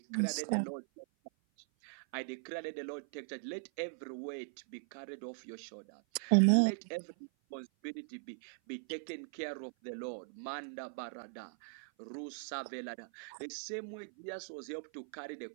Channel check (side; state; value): left; silent; 51 dB below the other